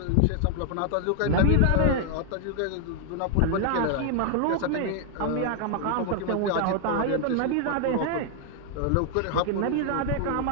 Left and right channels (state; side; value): different; both; correlation 0.00